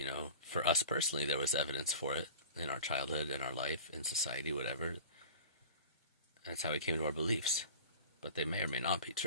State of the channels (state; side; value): inverted; both; correlation -0.40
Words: for us personally, there was evidence for it in our childhood, in our life, in society, whatever. That's how we came to our beliefs. But they may or may not be